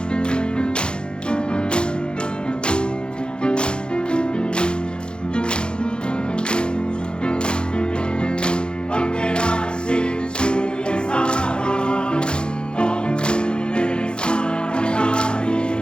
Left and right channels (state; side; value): late; right; 0.050 ms